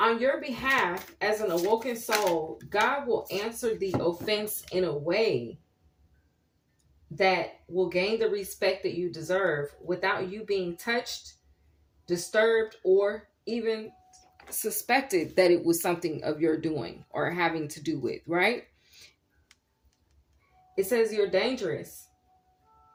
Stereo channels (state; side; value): identical; both; correlation 1.00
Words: your behalf, as an awoken soul, God will answer the offense in a way that will gain the respect that you deserve without you being touched, disturbed, or even suspected that it was something of your doing or having to do with, right? It says you're dangerous.